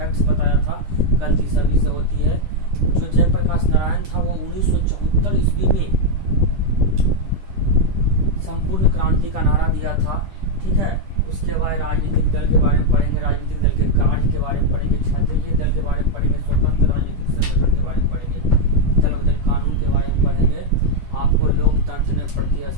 बताया था। गलती सभी से होती है। जो जयप्रकाश नारायण था वो 1974 ईस्वी में संपूर्ण क्रांति का नारा दिया था। ठीक है, उसके बाद राजनीतिक दल के बारे में पढ़ेंगे, राजनीतिक दल के कार्य के बारे में पढ़ेंगे, क्षत्रिय दल के बारे में पढ़ेंगे, स्वतंत्र राजनीतिक संगठन के बारे में पढ़ेंगे, दल बदल कानून के बारे में पढ़ेंगे। आपको लोकतंत्र में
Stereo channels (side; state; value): left; late; 10 ms